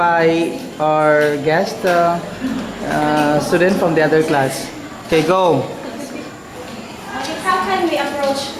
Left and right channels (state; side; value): identical; both; correlation 1.00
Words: our guest student from the other class. Okay, go. How can we approach